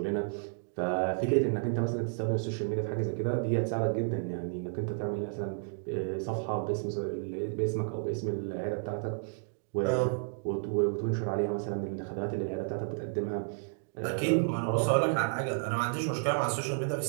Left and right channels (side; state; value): left; silent; digital silence